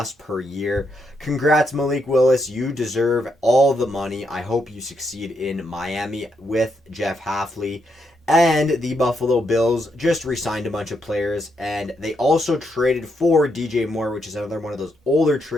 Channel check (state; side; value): normal; both; correlation 0.79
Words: per year. Congrats, Malik Willis. You deserve all the money. I hope you succeed in Miami with Jeff Hafley. And the Buffalo Bills just re-signed a bunch of players, and they also traded for DJ Moore, which is another one of those older